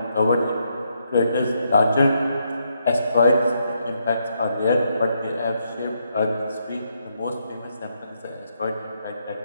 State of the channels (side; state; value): both; inverted; correlation -0.78